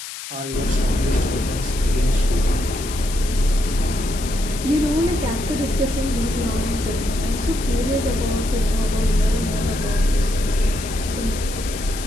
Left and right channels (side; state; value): left; noise; hiss, 10 dB below the sound